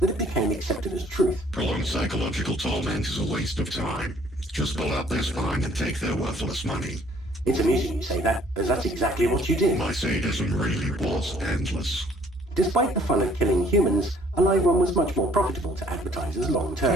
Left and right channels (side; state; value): both; normal; correlation 0.60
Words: it became accepted as truth. Prolonged psychological torment is a waste of time. Just pull out their spine and take their worthless money. It's amusing you say that, as that's exactly what you did. My sadism really was endless. Despite the fun of killing humans, a live one was much more profitable to advertisers long